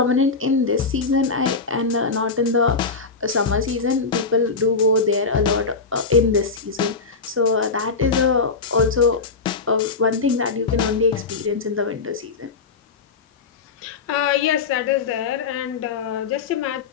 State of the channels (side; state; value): right; quieter; 4.6 dB